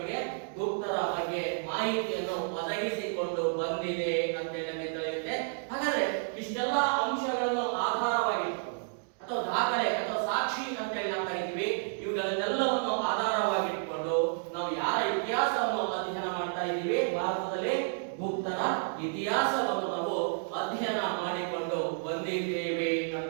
ಗುಪ್ತರ ಬಗ್ಗೆ ಮಾಹಿತಿಯನ್ನು ಒದಗಿಸಿಕೊಂಡು ಬಂದಿದೆ ಅಂತ ನಮಗೆ ತಿಳಿಯುತ್ತೆ. ಹಾಗಾದ್ರೆ ಇಷ್ಟೆಲ್ಲ ಅಂಶಗಳನ್ನು ಆಧಾರವಾಗಿಟ್ಕೊಂಡು ಅಥವಾ ದಾಖಲೆ ಅಥವಾ ಸಾಕ್ಷಿ ಅಂತ ನಾವು ಕರಿತೀವಿ. ಇವುಗಳನ್ನೆಲ್ಲವನ್ನು ಆಧಾರವಾಗಿಟ್ಕೊಂಡು ನಾವು ಯಾರ ಇತಿಹಾಸವನ್ನು ಅಧ್ಯಯನ ಮಾಡ್ತಾ ಇದ್ದೀವಿ? ಭಾರತದಲ್ಲಿ ಗುಪ್ತರ ಇತಿಹಾಸವನ್ನು ನಾವು ಅಧ್ಯಯನ ಮಾಡಿಕೊಂಡು ಬಂದಿದ್ದೇವೆ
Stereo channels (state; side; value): silent; left; digital silence